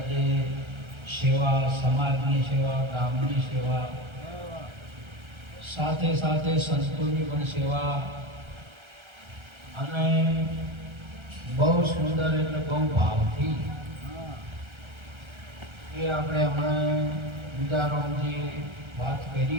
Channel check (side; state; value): left; late; 1.3 ms